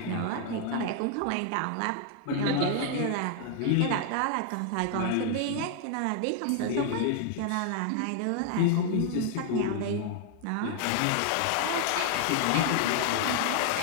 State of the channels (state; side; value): different; both; correlation 0.00